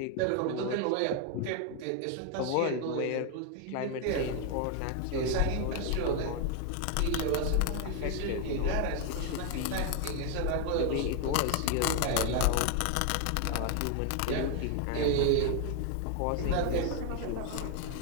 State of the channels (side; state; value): both; different; correlation 0.01